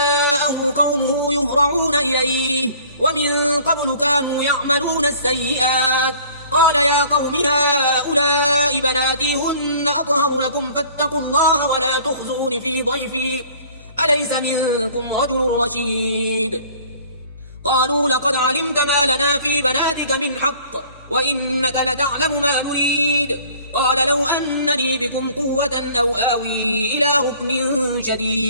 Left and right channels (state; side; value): inverted; both; correlation -0.52